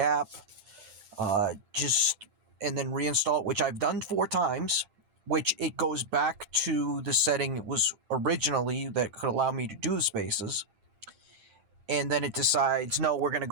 and then reinstall it, which I've done 4 times, which it goes back to the setting it was originally that could allow me to do the spaces. And then it decides, no, we're going to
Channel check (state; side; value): late; left; 10 ms